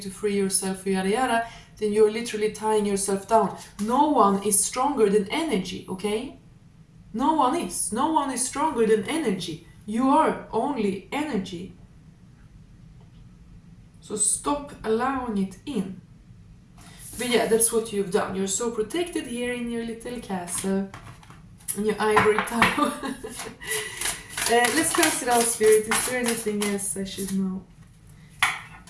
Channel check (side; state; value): both; identical; correlation 1.00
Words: free yourself, yada yada, then you're literally tying yourself down. No one is stronger than energy, okay? No one is. No one is stronger than energy. You are only energy. So stop allowing it in. But yeah, that's what you've done. You're so protected here in your little castle, in your ivory tower. Let's cast it out, Spirit. Is there anything else I should know?